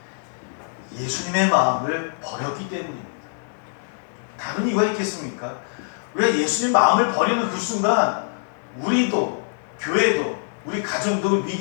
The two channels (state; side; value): silent; right; digital silence